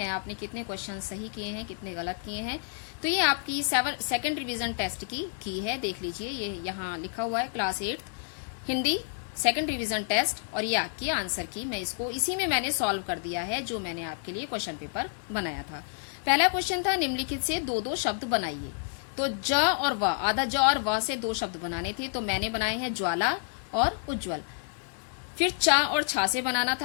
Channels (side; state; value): right; silent; digital silence